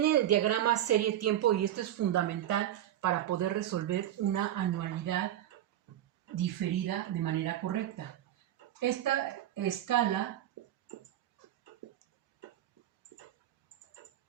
el diagrama serie-tiempo y esto es fundamental para poder resolver una anualidad diferida de manera correcta. Esta escala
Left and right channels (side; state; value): left; quieter; 12.1 dB